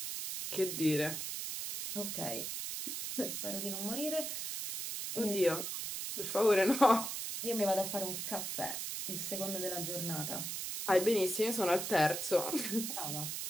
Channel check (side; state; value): right; noise; hiss, 4 dB below the sound